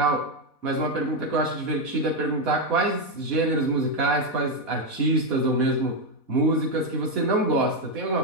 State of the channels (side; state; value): right; late; 4.1 ms